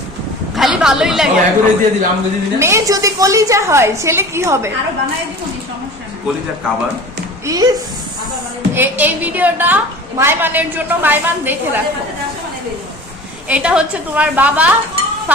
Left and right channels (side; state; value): both; normal; correlation 0.39